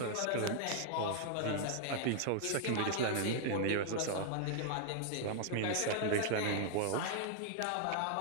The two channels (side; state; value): both; different; correlation 0.00